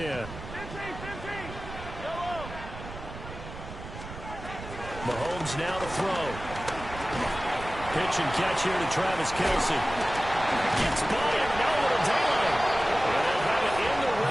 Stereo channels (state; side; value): noise; right; rumble, 12 dB below the sound